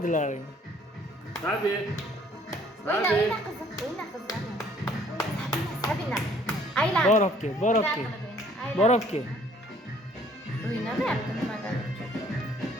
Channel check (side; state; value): both; normal; correlation 0.59